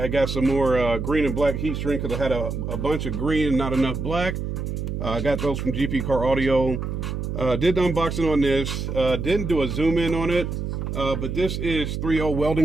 got some more green and black heat shrink because I had a bunch of green and not enough black. I got those from GP Car Audio. Did the unboxing on this. Didn't do a zoom in on it. But this is 3.0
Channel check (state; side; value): noise; right; hum, 4 dB below the sound